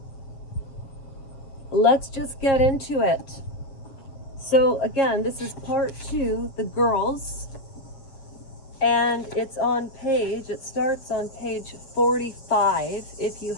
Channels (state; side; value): late; right; 7.4 ms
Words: let's just get into it. So again, this is part 2, The Girls, and it starts on page 45. If you